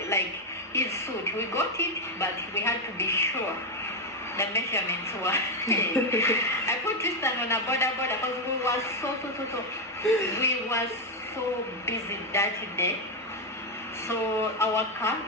like his suit. We got it, but we had to be sure the measurements were. I put Tristan on a border because we were we were so busy that day. So our car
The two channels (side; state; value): both; normal; correlation 0.05